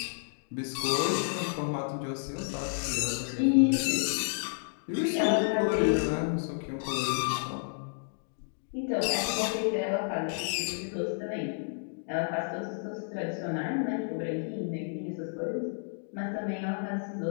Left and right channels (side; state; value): right; silent; digital silence